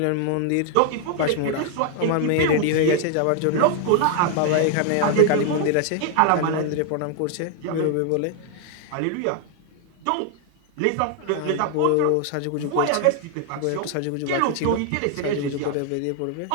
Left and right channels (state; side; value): different; both; correlation 0.00